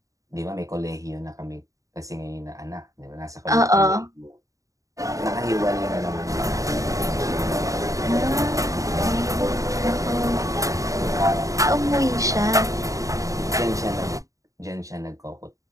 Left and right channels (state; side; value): late; left; 0.16 ms